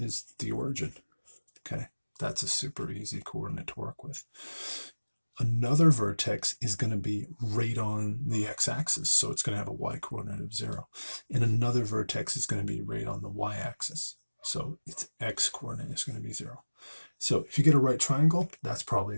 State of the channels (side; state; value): both; inverted; correlation -1.00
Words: the origin. Okay, that's a super easy coordinate to work with. Another vertex is going to be right on the x-axis, so it's going to have a y-coordinate of 0. And another vertex is going to be right on the y-axis, so its x-coordinate is going to be 0. So if you get a right triangle, that's